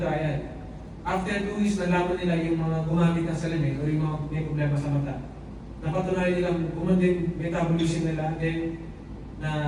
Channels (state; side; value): identical; both; correlation 1.00